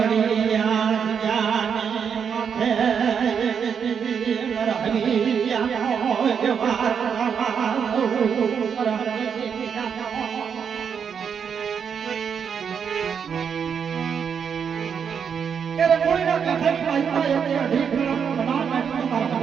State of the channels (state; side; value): quieter; left; 7.1 dB